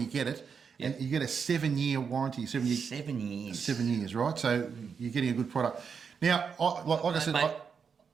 get it, Yep. and you get a 7-year warranty. 7 years. 7 years. 7 years, right? So you're getting a good product. Now, like I said, Mate,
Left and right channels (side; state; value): left; quieter; 6.2 dB